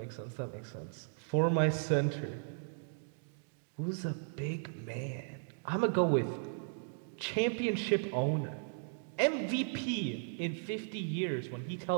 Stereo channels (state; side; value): silent; left; digital silence